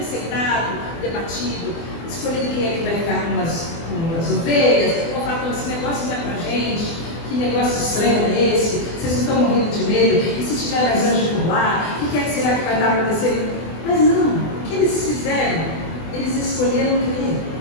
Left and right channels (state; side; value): late; right; 24 ms